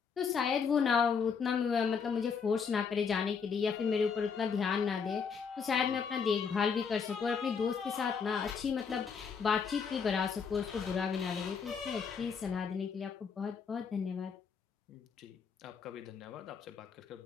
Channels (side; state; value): right; quieter; 6.1 dB